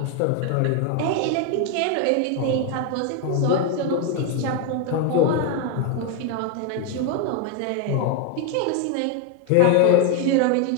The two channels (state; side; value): different; both; correlation 0.01